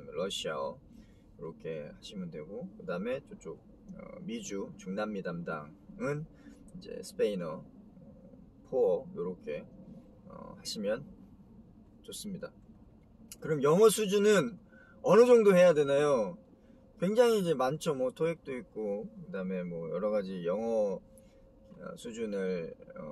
러시아어 이렇게 하시면 되고 그다음에 저쪽 미주, 중남미 담당은 이제 스페인어, 포어 이렇게 하시면 좋습니다. 그럼 영어 수준은 어느 정도 해야 되나요? 굉장히 이제 많죠. 뭐 토익도 있고 그다음에 뭐 여러 가지 영어 수준을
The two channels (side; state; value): both; identical; correlation 1.00